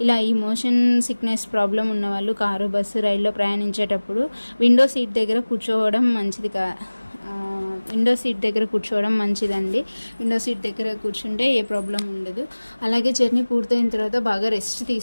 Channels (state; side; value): inverted; both; correlation -1.00